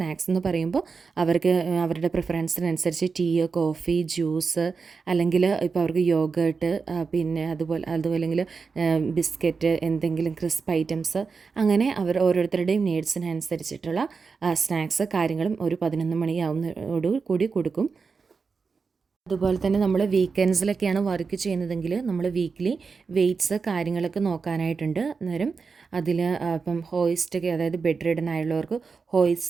എന്ന് പറയുമ്പോൾ അവർക്ക് അവരുടെ പ്രിഫറൻസിനനുസരിച്ച് ടീ, കോഫി, ജ്യൂസ് അല്ലെങ്കിൽ ഇപ്പോൾ അവർക്ക് യോഗേർട്ട് പിന്നെ അതുപോലെ ബിസ്ക്കറ്റ്, എന്തെങ്കിലും ക്രിസ്പ് ഐറ്റംസ് അങ്ങനെ അവർ ഓരോരുത്തരുടെയും നീഡ്സിനനുസരിച്ചിട്ടുള്ള സ്നാക്സ് കാര്യങ്ങളും ഒരു 11 മണിയാവുന്നതോടു കൂടി കൊടുക്കും. അതുപോലെ തന്നെ നമ്മൾ വീക്കെൻഡ്സിലൊക്കെയാണ് വർക്ക് ചെയ്യുന്നതെങ്കിൽ നമ്മൾ വീക്ക്ലി വെയ്റ്റ്സ് കാര്യങ്ങളൊക്കെ നോക്കാനായിട്ടുണ്ട്. അന്നേരം അതിൽ ഇപ്പം ഹോയിസ്റ്റൊക്കെ അതായത് ബെഡ് റിഡൻ ആയുള്ളവർക്ക് ഹോയിസ്റ്റ്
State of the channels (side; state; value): left; quieter; 5.0 dB